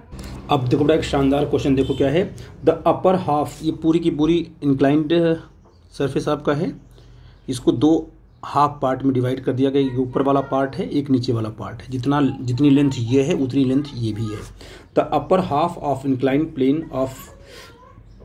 अब देखो बेटा एक शानदार क्वेश्चन देखो क्या है, द अपर हाफ, ये पूरी की पूरी इंक्लाइंड सरफेस आपका है, इसको दो हाफ पार्ट में डिवाइड कर दिया गया, एक ऊपर वाला पार्ट है एक नीचे वाला पार्ट है, जितनी लेंथ ये है उतनी लेंथ ये भी है। The upper half of inclined plane of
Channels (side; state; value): both; identical; correlation 1.00